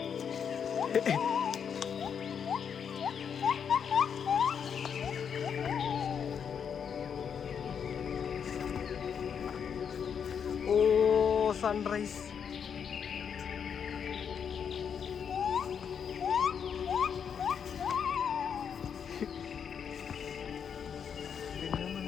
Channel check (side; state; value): right; quieter; 7.3 dB